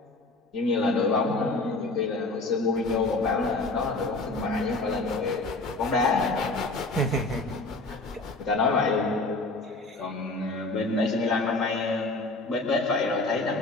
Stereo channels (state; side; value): quieter; right; 3.1 dB